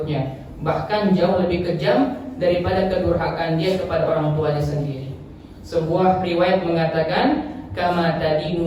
bahkan jauh lebih kejam daripada kedurhakaan dia kepada orang tuanya sendiri. Sebuah riwayat mengatakan, kama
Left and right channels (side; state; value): both; identical; correlation 1.00